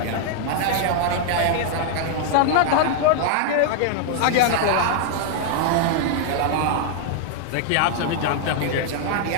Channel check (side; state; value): both; different; correlation -0.01